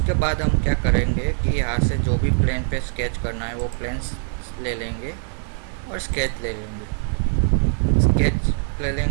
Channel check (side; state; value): left; silent; 64 dB below the other